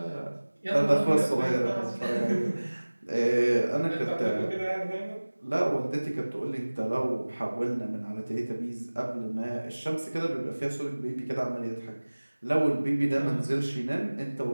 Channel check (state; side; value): inverted; both; correlation -1.00